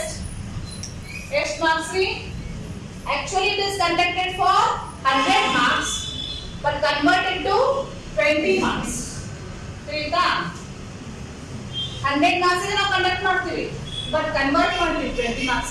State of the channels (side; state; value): both; identical; correlation 1.00